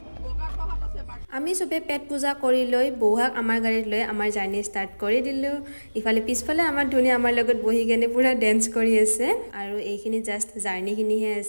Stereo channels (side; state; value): both; inverted; correlation -1.00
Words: আমি সবে পেট পূজা কৰি লৈ বৌহাক আমাৰ গাড়ীত লৈ আমাৰ জাৰ্নি ষ্টাৰ্ট কৰি দিলোঁ ইফালে পিছফালে আমাৰ ধুনীয়া আমাৰ লগত বহি কেনে পুৰা ডেন্স কৰি আছে আৰু এইখিনি জাষ্ট জাৰ্নিখিনিহে